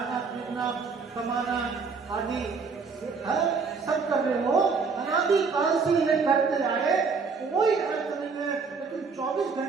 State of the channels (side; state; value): left; quieter; 5.0 dB